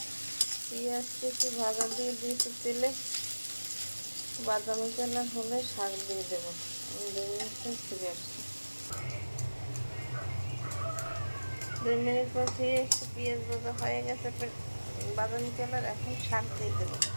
পেঁয়াজ কেটে ভাজা দিয়ে দিয়েছি তেলে। বাদামি কালার হলে শাক দিয়ে দেবো। আমি 2 মিনিট পর ফিরে আসছি। 2 মিনিট পর ফিরে এসে পেঁয়াজ ভাজা হয়ে গেছে, বাদামি কালার। এখন শাক দিয়ে দেবো।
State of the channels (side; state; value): both; inverted; correlation -1.00